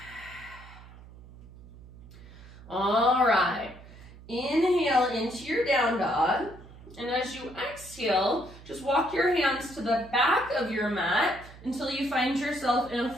All right. Inhale into your down dog. And as you exhale, just walk your hands to the back of your mat until you find yourself in a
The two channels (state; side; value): noise; right; hum, 19 dB below the sound